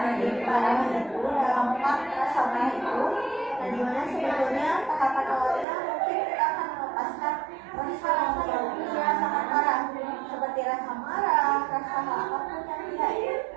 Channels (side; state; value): left; drops out; at 5.7 s